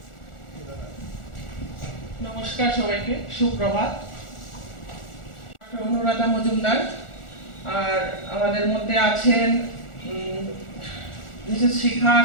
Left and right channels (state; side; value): late; right; 1.4 ms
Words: নমস্কার সবাইকে, সুপ্রভাত। অনুরাধা মজুমদার, আর আমাদের মধ্যে আছেন Mrs Shikha